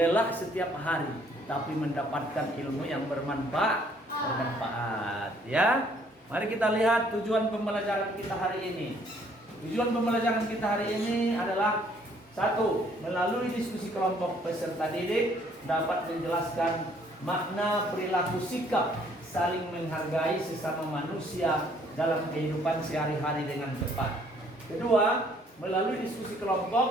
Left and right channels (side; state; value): both; normal; correlation 0.62